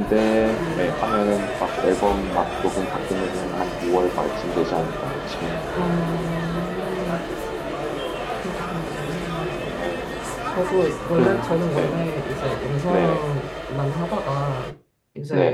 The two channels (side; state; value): both; identical; correlation 1.00